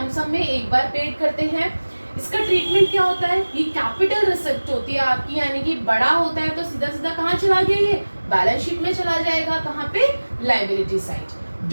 में एक बार पेड करते हैं। इसका ट्रीटमेंट क्या होता है, ये कैपिटल रिसिप्ट होती है आपकी, यानी कि बड़ा होता है तो सीधा सीधा कहाँ चला गया, ये बैलेंस शीट में चला जाएगा, कहाँ पे, लायबिलिटी साइड।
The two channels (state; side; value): inverted; both; correlation -1.00